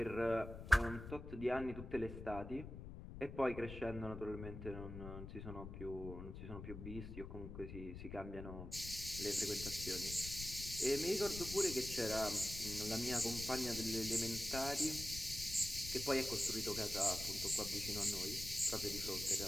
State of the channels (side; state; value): left; noise; rumble, 9 dB below the sound